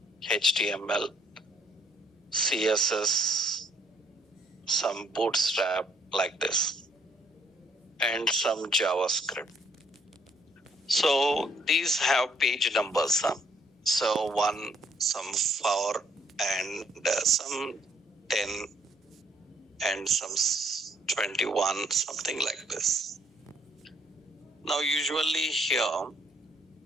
HTML, CSS, some bootstrap like this, and some JavaScript. So these have page numbers. So 1, some 4, and some 10, and some 21, something like this. Now usually here,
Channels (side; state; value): both; normal; correlation 0.65